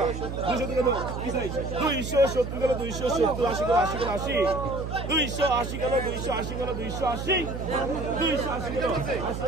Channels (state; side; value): noise; right; hum, 6 dB below the sound